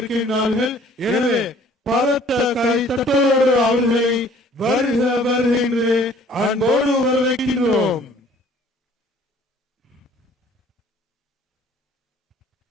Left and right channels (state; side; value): normal; both; correlation 0.55